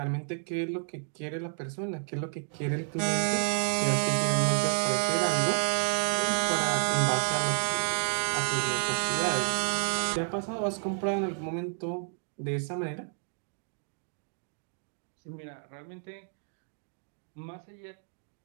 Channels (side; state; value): left; silent; 57 dB below the other